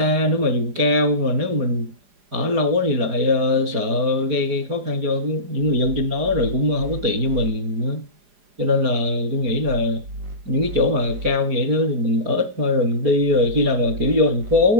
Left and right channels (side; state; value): left; late; 4.9 ms